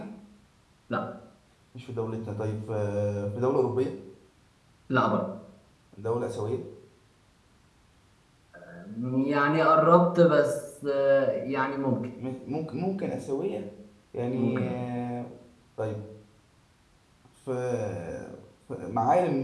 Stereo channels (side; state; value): both; identical; correlation 1.00